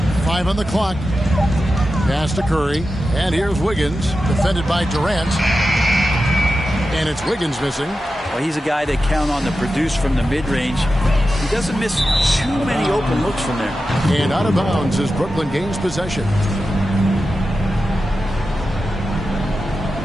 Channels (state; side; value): normal; both; correlation 0.92